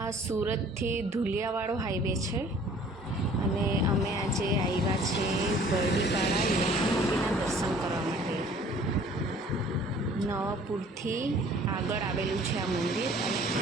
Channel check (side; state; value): both; normal; correlation 0.52